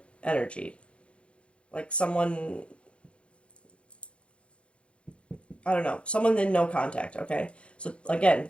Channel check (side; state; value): right; late; 0.059 ms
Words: energy. Like someone, I don't know, someone in no contact, okay? So, again,